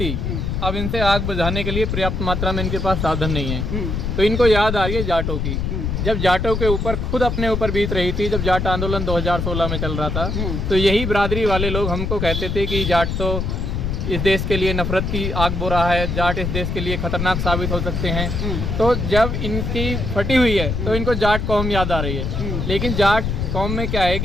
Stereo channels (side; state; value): left; noise; rumble, 2 dB below the sound